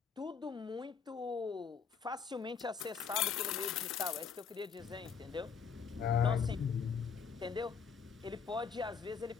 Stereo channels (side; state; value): right; quieter; 6.3 dB